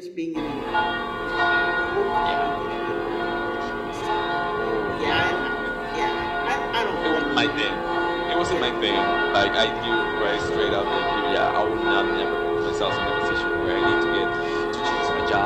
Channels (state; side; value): identical; both; correlation 1.00